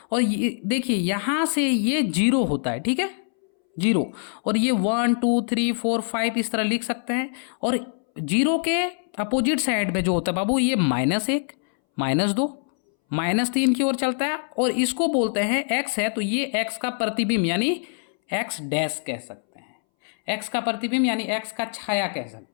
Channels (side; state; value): right; silent; 62 dB below the other